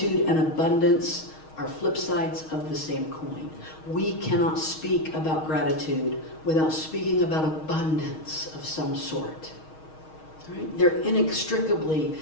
and abundance are flip sides of the same coin. We cannot speak about gratitude without speaking about abundance of some sort. Right? They're inextricably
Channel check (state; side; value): late; right; 6.4 ms